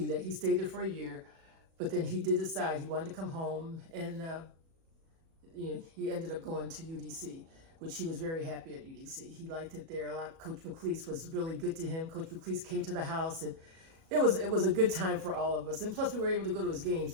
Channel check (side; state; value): left; late; 37 ms